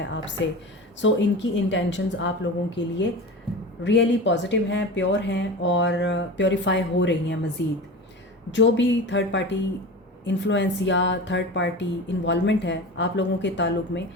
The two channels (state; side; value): normal; both; correlation 0.31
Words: आपसे। सो इनकी इंटेंशंस आप लोगों के लिए रियली पॉजिटिव हैं, प्योर हैं और प्योरीफाई हो रही हैं मज़ीद। जो भी थर्ड पार्टी इन्फ्लुएंस या थर्ड पार्टी इन्वॉल्वमेंट है आप लोगों के ताल्लुक़ में,